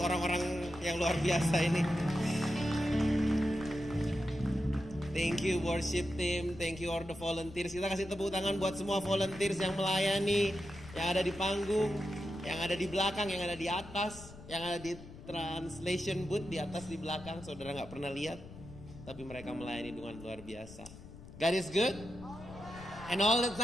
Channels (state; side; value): noise; left; rumble, 16 dB below the sound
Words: orang-orang yang luar biasa ini. Thank you worship team, thank you all the volunteers. Kita kasih tepuk tangan buat semua volunteers yang melayani, yang ada di panggung, yang ada di belakang, yang ada di atas, yang ada di translation booth di atas di belakang. Saudara nggak pernah lihat, tapi mereka melayani dengan luar biasa. God is good, and all the